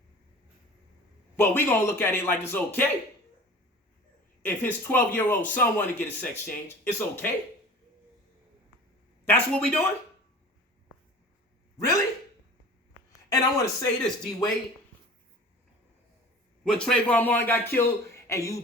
But we gonna look at it like it's okay. If his 12-year-old son want to get a sex change, it's okay. That's what we doing? Really? And I want to say this, D. Wade. When Trayvon Martin got killed and you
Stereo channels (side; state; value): both; normal; correlation 0.42